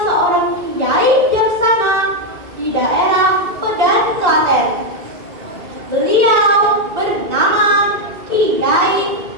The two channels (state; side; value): late; left; 1.8 ms